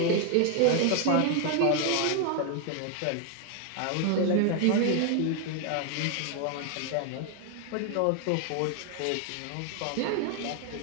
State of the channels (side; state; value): both; different; correlation 0.00